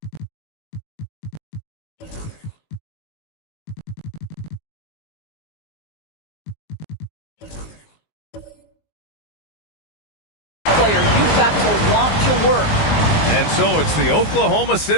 Player, you've got to want to work. And so it's the Oklahoma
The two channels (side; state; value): right; late; 19 ms